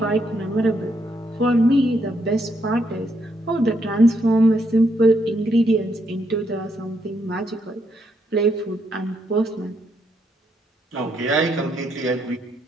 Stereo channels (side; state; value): both; normal; correlation 0.76